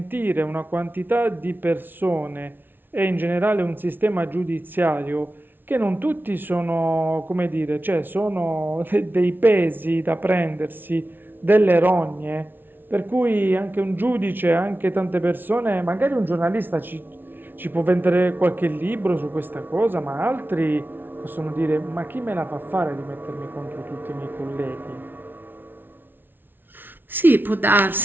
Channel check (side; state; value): left; late; 0.097 ms